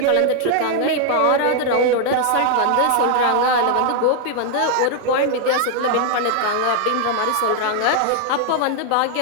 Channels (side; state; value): both; different; correlation 0.00